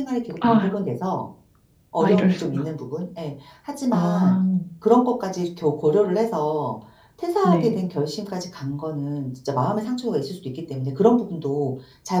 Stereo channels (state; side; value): identical; both; correlation 1.00